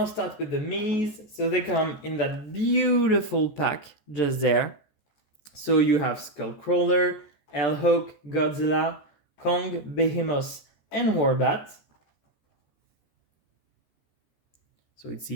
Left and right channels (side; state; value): right; late; 14 ms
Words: start with the minis. So they come in that beautiful pack just there. So you have Skullcrawler, Hawk, Godzilla, Kong, Behemoth, and Warbat. So it's